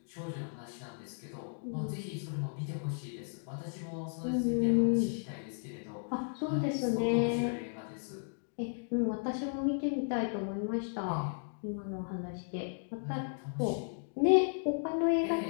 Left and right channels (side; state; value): right; silent; digital silence